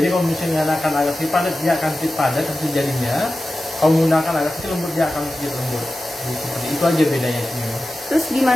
kalau misalnya akan agak sedikit padat, dia akan sedikit padat hasil jadinya. Kalau menggunakan agak sedikit lembut, dia akan sedikit lembut. Jadi, seperti itu aja bedanya semua. Terus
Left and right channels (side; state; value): both; normal; correlation 0.94